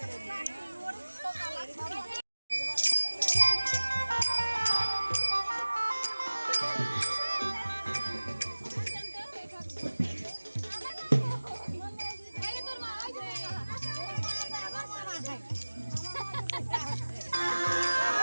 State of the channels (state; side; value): inverted; both; correlation -1.00